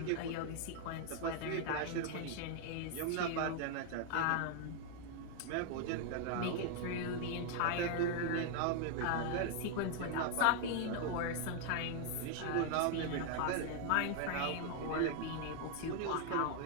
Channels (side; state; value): both; different; correlation 0.00